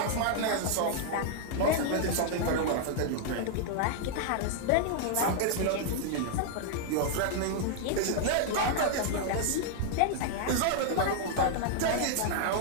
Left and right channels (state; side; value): different; both; correlation 0.00